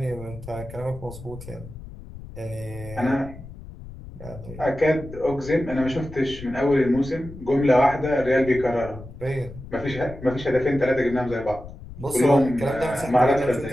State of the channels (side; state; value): left; noise; rumble, 15 dB below the sound